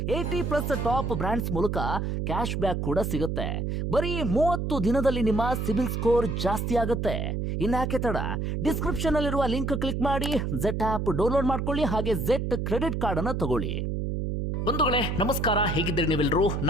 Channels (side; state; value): right; noise; hum, 1 dB below the sound